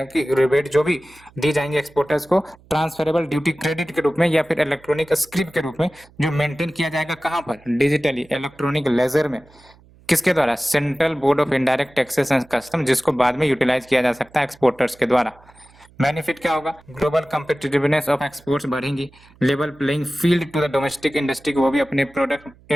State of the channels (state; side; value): noise; right; hum, 27 dB below the sound